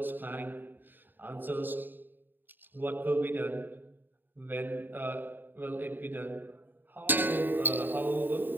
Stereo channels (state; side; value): late; left; 0.092 ms